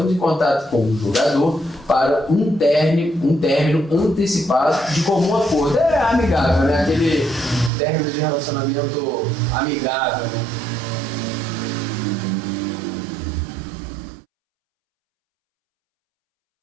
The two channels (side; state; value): left; drops out; at 7.7 s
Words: em contato com o jogador para um término antecipado de comum acordo. É amigável, né? Aquele término de relacionamento amigável, né?